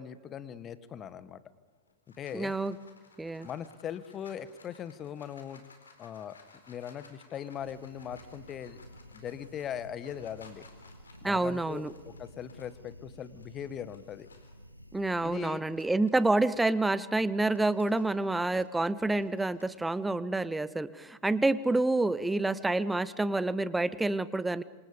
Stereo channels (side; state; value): both; normal; correlation 0.90